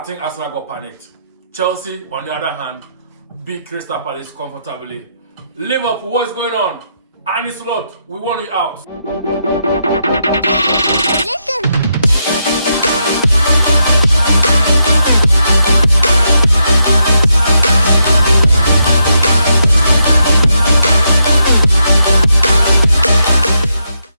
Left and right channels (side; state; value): both; inverted; correlation -0.81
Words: think Arsenal got panicked. Chelsea, on the other hand, beat Crystal Palace comfortably. Liverpool, what's going on? Annie Slot, we want you out.